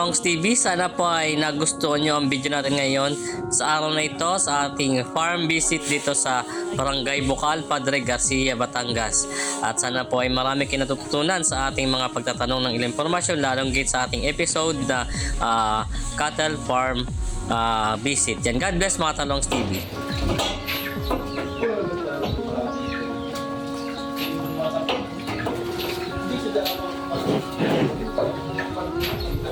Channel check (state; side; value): identical; both; correlation 1.00